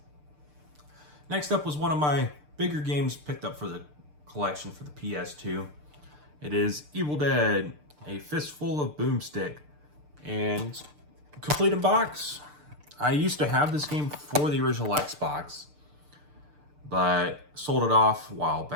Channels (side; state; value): left; late; 6.7 ms